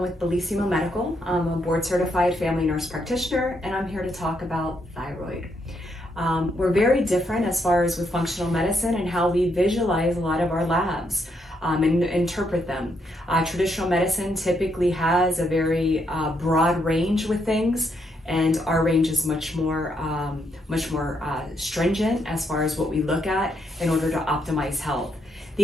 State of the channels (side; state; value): both; normal; correlation 0.77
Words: with Bellissimo Medical. I'm a board certified family nurse practitioner, and I'm here to talk about thyroid. We're very different as far as with functional medicine and how we visualize a lot of our labs and interpret them. Traditional medicine typically has a very broad range with things, and our range is much more stringent as far as what we look at in order to optimize health.